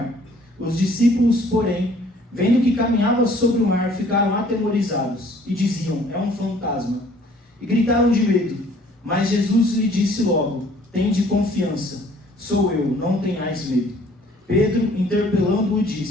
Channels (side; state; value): both; normal; correlation 0.57